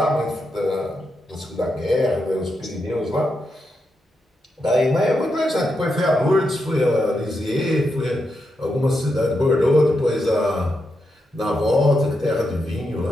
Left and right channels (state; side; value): normal; both; correlation 0.84